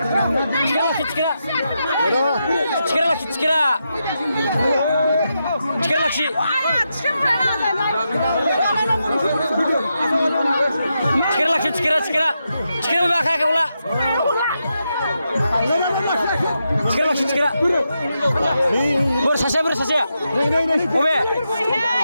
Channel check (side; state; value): both; inverted; correlation -0.85